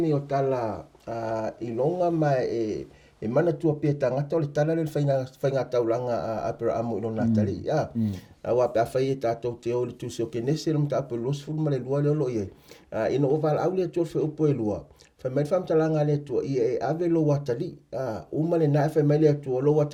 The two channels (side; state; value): both; identical; correlation 1.00